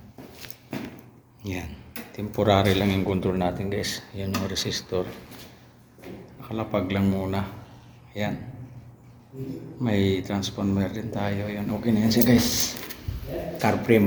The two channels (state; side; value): identical; both; correlation 1.00